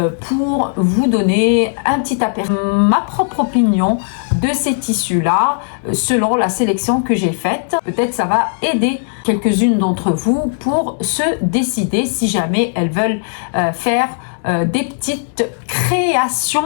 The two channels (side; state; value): right; silent; 66 dB below the other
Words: pour vous donner un petit aperçu, ma propre opinion de ces tissus là selon la sélection que j'ai faite. Peut-être ça va aider quelques-unes d'entre vous pour se décider si jamais elles veulent faire des petites